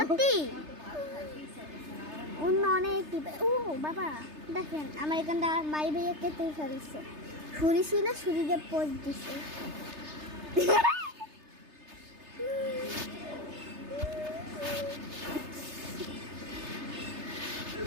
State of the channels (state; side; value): late; left; 3.3 ms